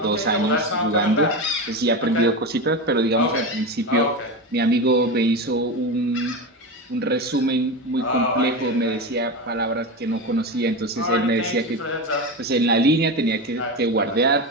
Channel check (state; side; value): normal; both; correlation 0.20